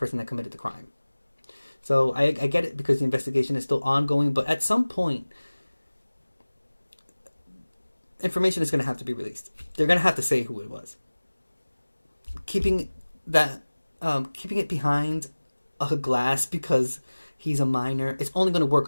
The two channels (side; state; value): both; inverted; correlation -1.00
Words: that committed the crime. So I get it because the investigation is still ongoing. But at some point, information is going to have to be released. They're going to have to say who it was. Keeping it behind a glass because he's a minor, it's only going to work